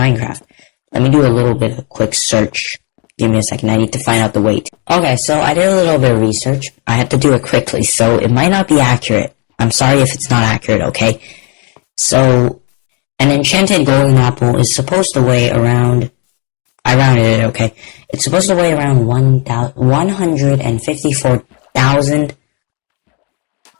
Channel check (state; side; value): quieter; right; 33.0 dB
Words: Let me do a little bit of a quick search. Give me a second, I need to find out the weight. Okay, so I did a little bit of research. I had to do it quickly, so it might not be accurate. I'm sorry if it's not accurate, okay? So, an enchanted golden apple is supposed to weigh around, I rounded it, okay. It's supposed to weigh around 154,000.